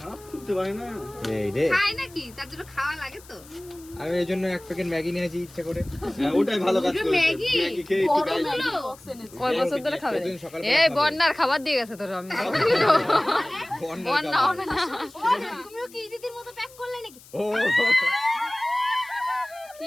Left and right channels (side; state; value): left; noise; hiss, 22 dB below the sound